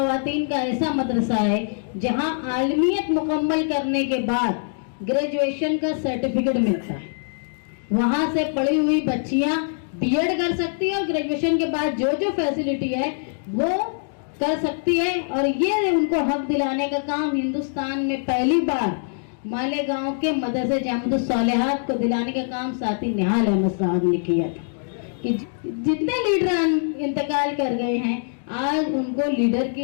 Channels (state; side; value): silent; right; digital silence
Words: का ऐसा मदरसा है जहां आलमियत मुकम्मल करने के बाद ग्रेजुएशन का सर्टिफिकेट मिलता है। वहां से पढ़ी हुई बच्चियां बीएड कर सकती है और ग्रेजुएशन के बाद जो जो फैसिलिटी है वो कर सकती है। और ये उनको हक दिलाने का काम हिंदुस्तान में पहली बार मालेगांव के मदरसे जामिअतुस सालिहात को दिलाने का काम साथी निहाल अहमद साहब ने किया था। कि जितने लीडर इंतकाल कर गए हैं आज उनको लीडर